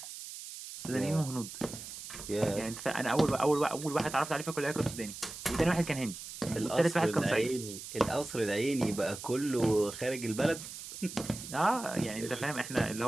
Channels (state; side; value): noise; right; hiss, 11 dB below the sound